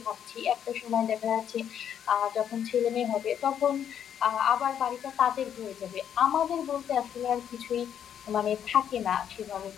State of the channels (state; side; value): quieter; right; 9.1 dB